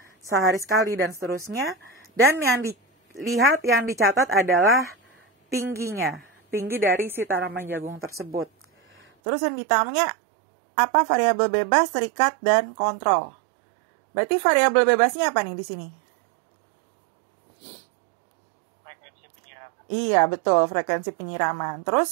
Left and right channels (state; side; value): drops out; left; at 9.1 s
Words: sehari sekali dan seterusnya. Dan yang dilihat, yang dicatat adalah tingginya, tinggi dari si tanaman jagung tersebut. Terus yang ditanya apa variabel bebas, terikat, dan kontrol. Berarti variabel bebasnya apa nih di sini? Frekuensi penyiraman. Iya, betul, frekuensi penyiraman.